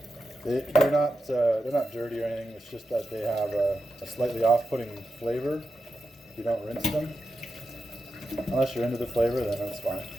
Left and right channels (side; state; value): both; normal; correlation 0.90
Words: They're not dirty or anything. It's just that they have a slightly off-putting flavor if you don't rinse them. Unless you're into the flavor, then that's fine.